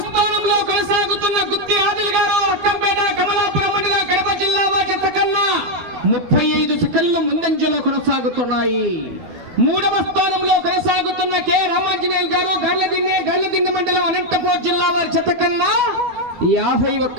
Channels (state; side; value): late; left; 12 ms